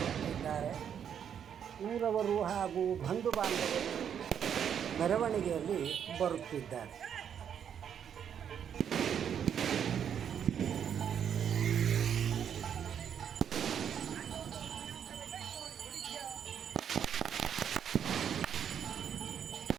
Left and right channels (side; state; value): left; quieter; 8.5 dB